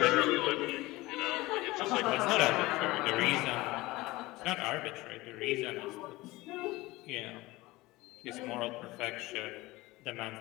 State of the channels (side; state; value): right; quieter; 20.1 dB